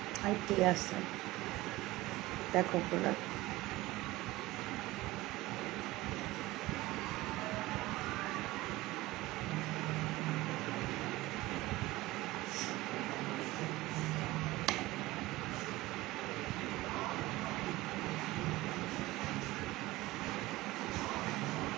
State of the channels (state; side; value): quieter; left; 18.9 dB